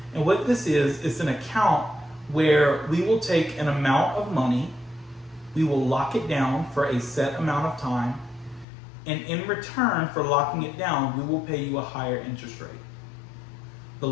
And what this is an account where we will take an amount of money, we will lock it down for a set amount of time, and in return for locking it down, we will pay you a higher interest rate. The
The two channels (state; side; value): drops out; right; at 8.7 s